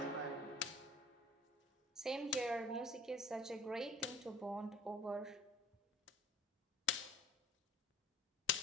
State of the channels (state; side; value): normal; both; correlation 0.48